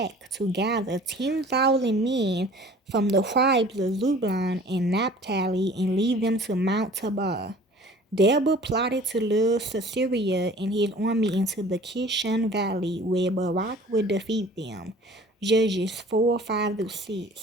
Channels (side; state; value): both; normal; correlation 0.48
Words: to gather 10,000 men from the tribes of Zebulun and Naphtali and lead them to Mount Tabor. Deborah plotted to lure Sisera and his army into the Kishon Valley, where Barak would defeat them. Judges